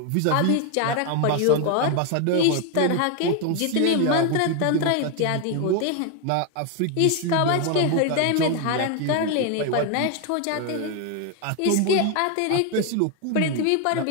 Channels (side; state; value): both; different; correlation 0.01